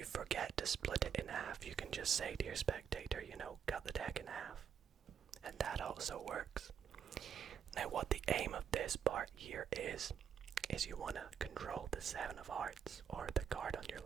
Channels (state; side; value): quieter; left; 7.9 dB